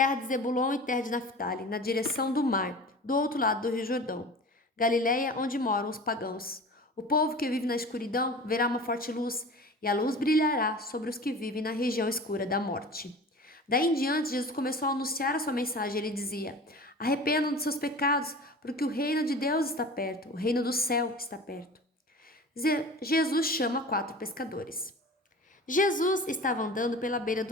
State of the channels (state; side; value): normal; both; correlation 0.37